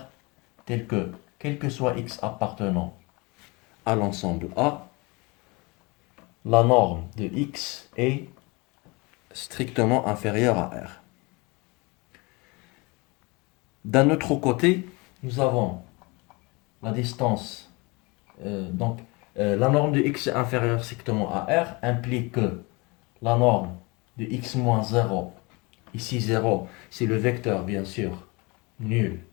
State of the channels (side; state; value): right; quieter; 26.8 dB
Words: tel que, quel que soit X appartenant à l'ensemble A, la norme de X est strictement inférieure à R. D'un autre côté, nous avons la distance, la norme de X est inférieure strictement à R, implique que la norme de X moins 0, ici 0, c'est le vecteur bien sûr nul